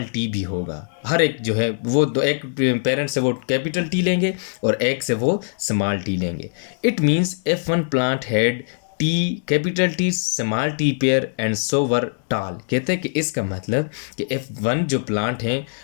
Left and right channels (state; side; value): silent; right; digital silence